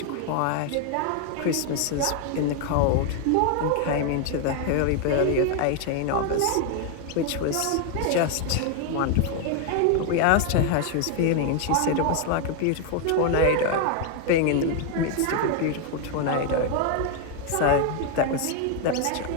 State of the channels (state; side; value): different; both; correlation 0.01